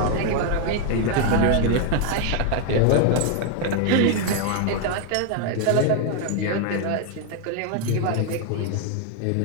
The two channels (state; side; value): different; both; correlation 0.01